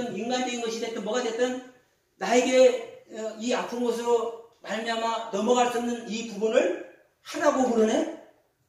인간적인 것이 됐든 뭐가 됐든 나에게 이 아픈 것으로 말미암아 넘어갈 수 없는 이 부분을 하라고 그러네.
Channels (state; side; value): identical; both; correlation 1.00